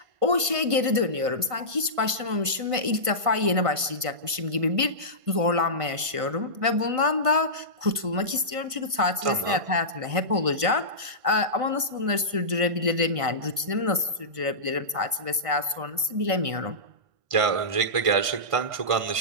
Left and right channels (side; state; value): left; late; 1.5 ms